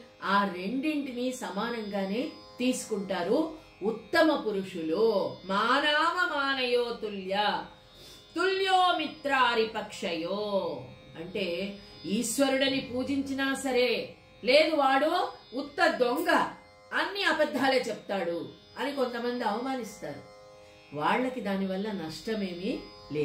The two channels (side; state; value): both; identical; correlation 1.00